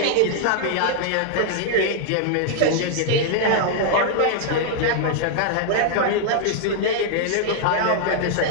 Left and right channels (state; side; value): different; both; correlation 0.00